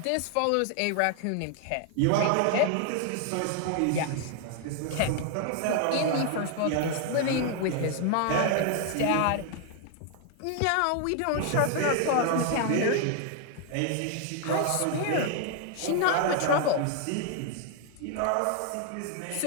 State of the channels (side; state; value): both; different; correlation 0.00